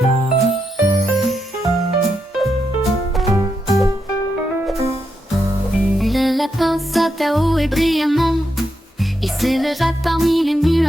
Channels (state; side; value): normal; both; correlation 0.83